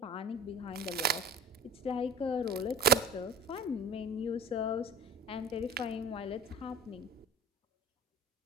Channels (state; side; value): normal; both; correlation 0.38